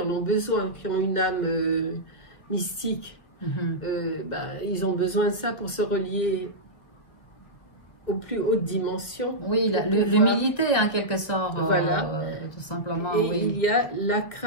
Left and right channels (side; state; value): right; late; 1.8 ms